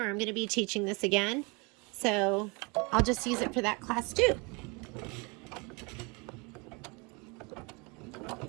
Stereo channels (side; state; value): left; quieter; 29.2 dB